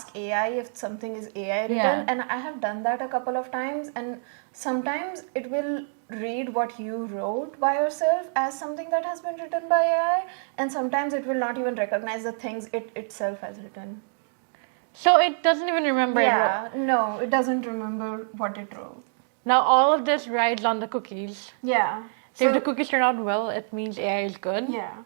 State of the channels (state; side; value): silent; left; digital silence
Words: AI if something is AI written, Yeah. and I have done that a couple of times, and sometimes it will read what you wrote by yourself as something that has been written by AI, and sometimes it will not even recognize the things it itself has written. So it doesn't even remember it. Yeah, no, it doesn't remember what it wrote. Now all of this rides on the cookies. Yeah. So if the cookies turn out well, it means AI is good. Yeah,